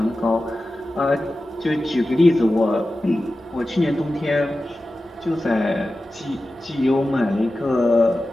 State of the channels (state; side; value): normal; both; correlation 0.94